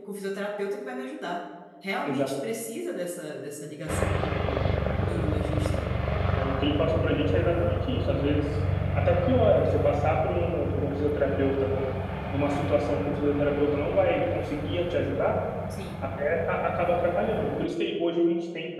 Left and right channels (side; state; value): both; identical; correlation 1.00